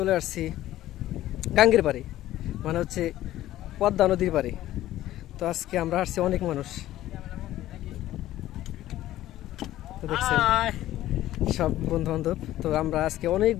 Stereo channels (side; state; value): right; quieter; 14.2 dB